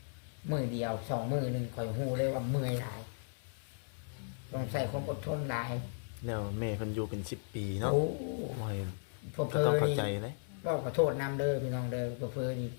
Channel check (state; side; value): silent; right; 54 dB below the other